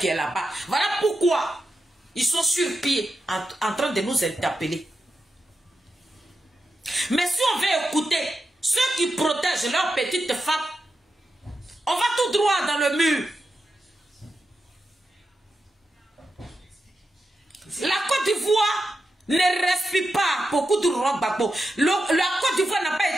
est là-bas. Voilà pourquoi ils sont sur pied en train de nous interpeller. Mais si on veut écouter ceux qui protègent leurs petites femmes, on va tout droit dans le mur. La Côte d'Ivoire ne respire pas beaucoup de Laurent Gbagbo. La Côte d'Ivoire n'a pas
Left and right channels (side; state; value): both; normal; correlation 0.89